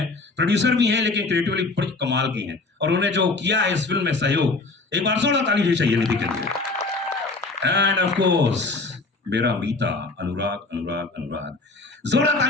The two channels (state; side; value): quieter; right; 3.5 dB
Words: प्रोड्यूसर भी हैं लेकिन क्रिएटिवली बड़ी कमाल की हैं, और उन्होंने जो किया है इस फिल्म में सहयोग, एक बार जोरदार ताली होनी चाहिए निधि के लिए। एंड ऑफ कोर्स मेरा मीता अनुराग, अनुराग, अनुराग, जोरदार